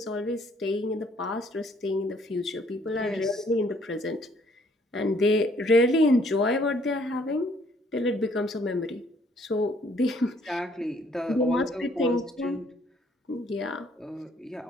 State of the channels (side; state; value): both; normal; correlation 0.64